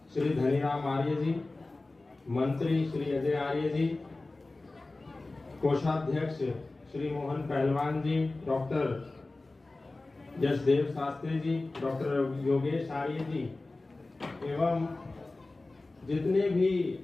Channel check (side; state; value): right; quieter; 3.2 dB